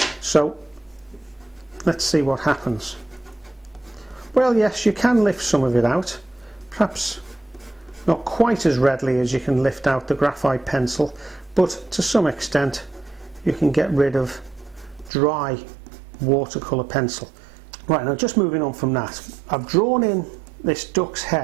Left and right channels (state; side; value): drops out; left; at 15.1 s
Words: So let's see what happens. Well, yes, you can lift some of it out, perhaps not quite as readily as you can lift out the graphite pencil, but to some extent you can get rid of dry watercolour pencil. Right, now just moving on from that, I've drawn in this duck's